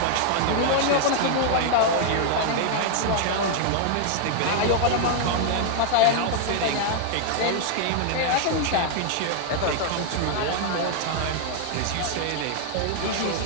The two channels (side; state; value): both; different; correlation 0.00